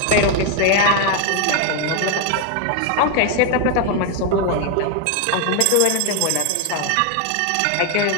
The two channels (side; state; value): both; different; correlation 0.01